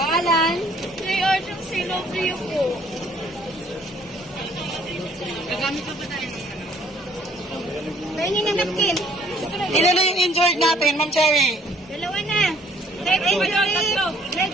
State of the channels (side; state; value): both; normal; correlation 0.61